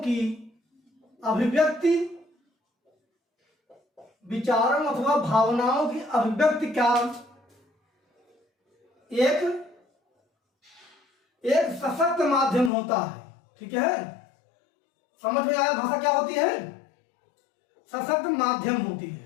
अभिव्यक्ति, विचारों अथवा भावनाओं की अभिव्यक्ति का एक सशक्त माध्यम होता है, ठीक है। समझ में आया? भाषा क्या होती है? सशक्त माध्यम होती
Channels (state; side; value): drops out; right; at 12.7 s